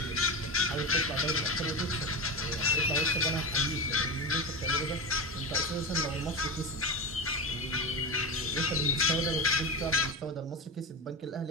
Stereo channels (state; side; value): normal; both; correlation 0.20